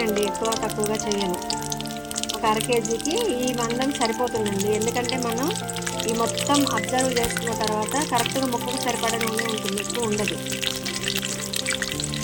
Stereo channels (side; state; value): both; identical; correlation 1.00